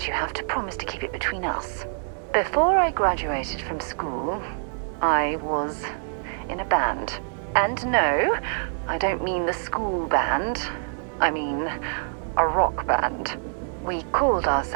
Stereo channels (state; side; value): silent; left; digital silence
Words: you have to promise to keep it between us. Before I graduated from school, I was in a band. And no, I don't mean the school band. I mean a rock band. We called